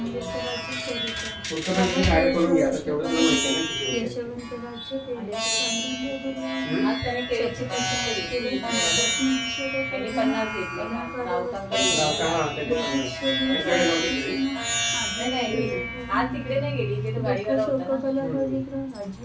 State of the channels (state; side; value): identical; both; correlation 1.00